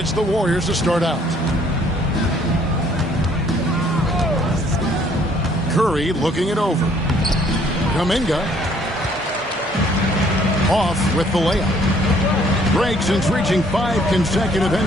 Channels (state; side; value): normal; both; correlation 0.62